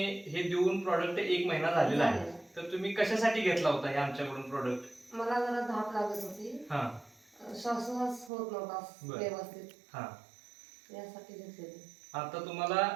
हे देऊन प्रॉडक्ट 1 महिना झालेला आहे. तर तुम्ही कशासाठी घेतला होता हे आमच्याकडून प्रॉडक्ट? मला जरा धाप लागत होती, हां. श्वासोच्छ्वास होत नव्हता बरं. व्यवस्थित, हां. यासाठी घेतलेली. आता तुम्हाला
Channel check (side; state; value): left; drops out; at 8.3 s